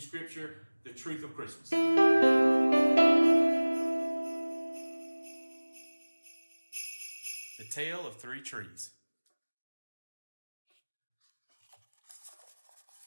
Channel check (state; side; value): inverted; both; correlation -1.00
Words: the truth of Christmas. The Tale of Three Trees.